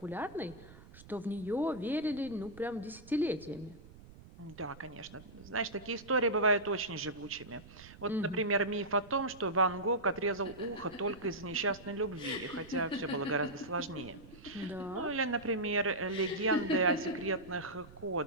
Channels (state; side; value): noise; right; rumble, 19 dB below the sound